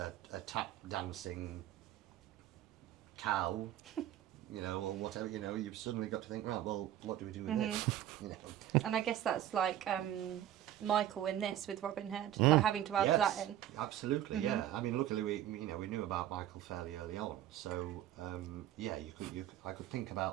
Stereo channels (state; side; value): quieter; left; 12.2 dB